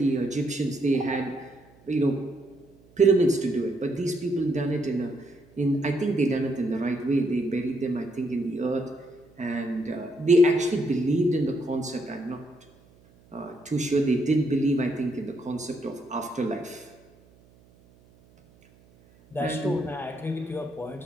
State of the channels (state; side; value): noise; right; hum, 28 dB below the sound